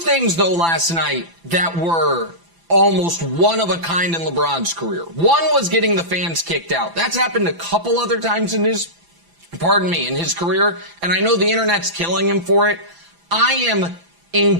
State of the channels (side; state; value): left; late; 5.9 ms